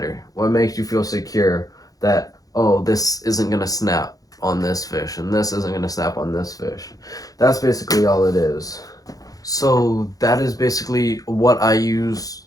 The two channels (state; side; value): late; right; 0.17 ms